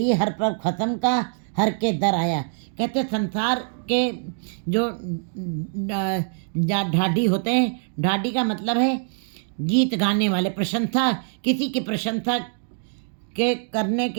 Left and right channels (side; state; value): left; silent; digital silence